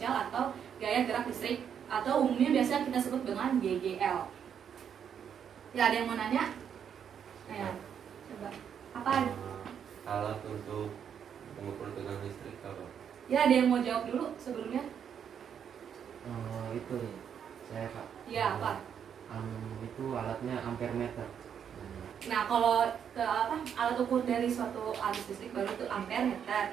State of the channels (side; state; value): left; quieter; 8.1 dB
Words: atau gaya gerak listrik, atau umumnya biasa kita sebut dengan GGL. Ya ada yang mau nanya? Ayo, coba. Apa? Alat untuk mengukur tegangan listrik apa? Ya ada yang mau jawab dulu sebelumnya? Itu nih, saya Kak. Iya apa? Itu alatnya ampere meter. Nah kalau alat ukur dari suatu arus listrik baru itu ampere meter.